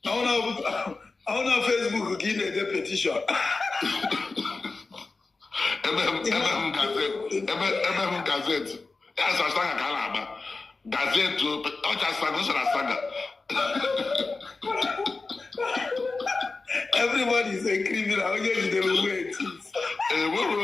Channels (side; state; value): right; quieter; 3.8 dB